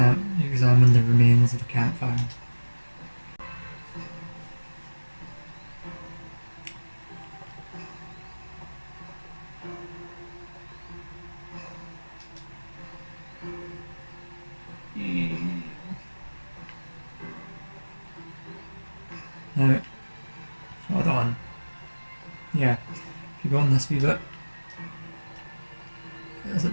the remains of the campfire. Now, hold on. Yeah, if you go on this wee bit, is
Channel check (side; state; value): both; inverted; correlation -1.00